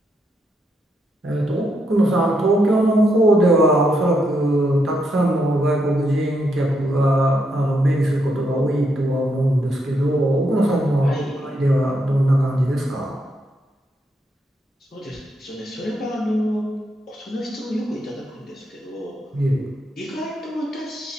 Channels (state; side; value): normal; both; correlation 0.79